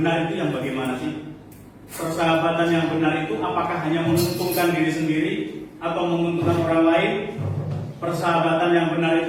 itu yang bagaimana sih? Persahabatan yang benar itu apakah hanya menguntungkan diri sendiri atau menguntungkan orang lain? Persahabatan yang benar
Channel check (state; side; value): identical; both; correlation 1.00